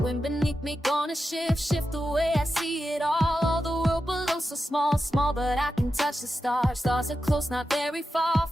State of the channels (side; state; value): both; normal; correlation 0.90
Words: beneath me gonna shift the way I see it all the world below so small, small, but I can touch the stars. Stars are close, not very far,